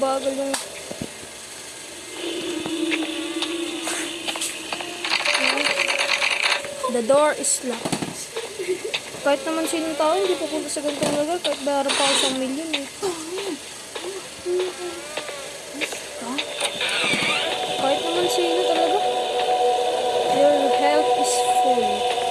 yung... The door is locked. Kahit naman sinong tao, hindi pupunta sa ganitong lugar. Kahit bayaran pa ako 1 million eh. Kahit naman sino talaga. Your health is full.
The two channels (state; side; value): identical; both; correlation 1.00